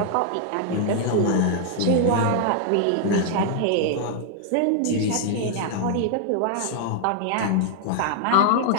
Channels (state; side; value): different; both; correlation 0.00